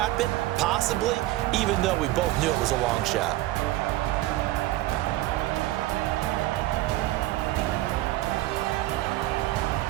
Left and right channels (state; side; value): quieter; left; 16.6 dB